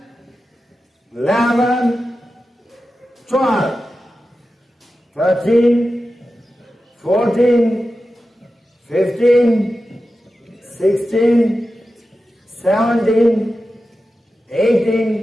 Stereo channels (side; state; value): both; normal; correlation 0.92